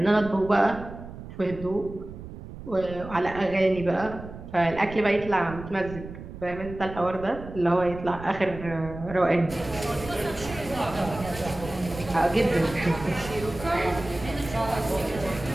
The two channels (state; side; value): noise; right; rumble, 13 dB below the sound